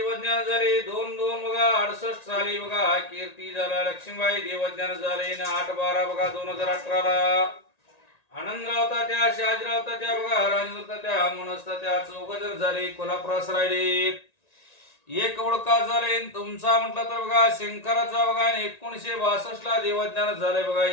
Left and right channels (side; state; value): right; late; 1.9 ms